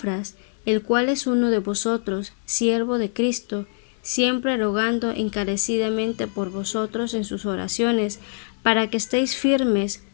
el cual es uno de vosotros, siervo de Cristo, siempre rogando encarecidamente por vosotros en sus oraciones, para que estéis firmes,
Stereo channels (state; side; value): silent; right; 63 dB below the other